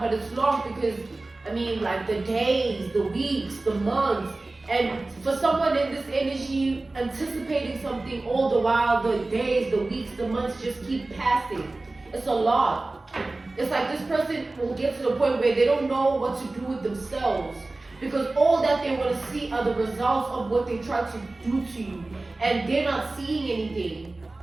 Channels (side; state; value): left; quieter; 3.1 dB